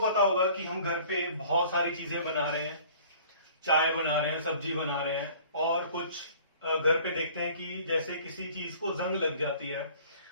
होगा कि हम घर पे बहुत सारी चीजें बना रहे हैं, चाय बना रहे हैं, सब्जी बना रहे हैं, और कुछ घर पे देखते हैं कि जैसे किसी चीज को जंग लग जाती है,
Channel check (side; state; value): both; inverted; correlation -0.50